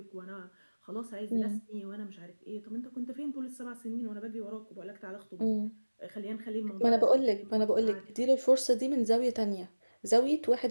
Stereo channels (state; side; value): inverted; both; correlation -1.00